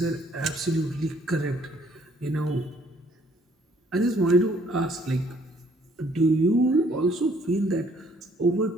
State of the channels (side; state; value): both; normal; correlation 0.63